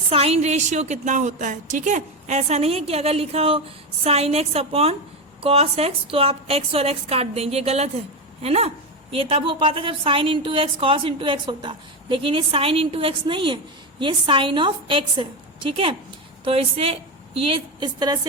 रेशियो कितना होता है। ठीक है, ऐसा नहीं है कि अगर लिखा हो sine x upon cos x तो आप एक्स और एक्स काट देंगे, ये गलत है ना। ये तब हो पाता जब sine into x cos into x होता, लेकिन ये साइन इंटू एक्स नहीं है, ये साइन ऑफ एक्स है। ठीक है, तो इसे ये इस तरह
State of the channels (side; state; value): both; normal; correlation 0.14